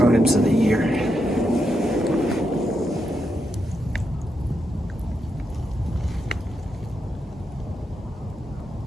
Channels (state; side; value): normal; both; correlation 0.83